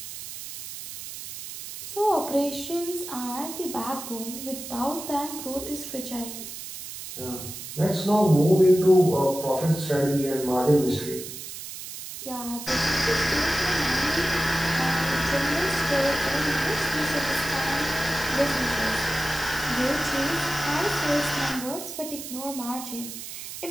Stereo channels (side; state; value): right; noise; hiss, 10 dB below the sound